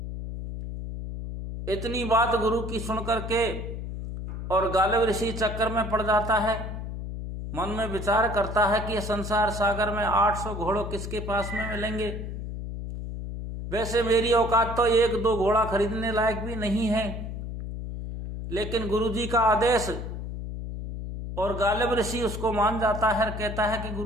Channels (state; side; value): noise; left; hum, 7 dB below the sound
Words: इतनी बात गुरु की सुनकर के और गालिब ऋषि चक्कर में पड़ जाता है। मन में विचार करता है कि संसार सागर में 800 घोड़ों किसके पास में मिलेंगे। वैसे मेरी औकात तो 1-2 घोड़ा खरीदने लायक भी नहीं है, लेकिन गुरुजी का आदेश, और गालिब ऋषि उसको मान जाता है। कहता है कि